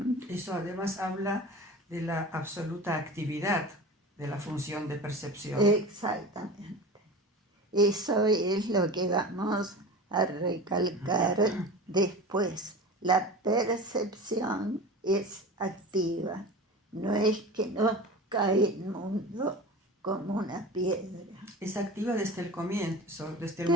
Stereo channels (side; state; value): both; normal; correlation 0.33